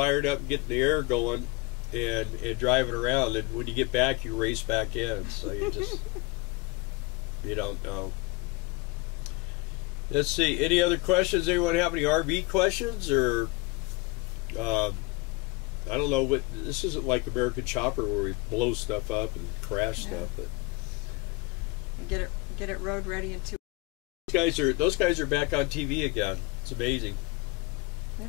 up and getting the air going and driving around, and when you get back you race back in, so you just you don't know. Let's see, any other questions? Anyone have any RV questions? Or I don't know, what this isn't like American Chopper where we blow stuff up and crash stuff, but get it road ready in 2. Those guys are back on TV again. It's amazing. They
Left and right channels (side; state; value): right; quieter; 23.2 dB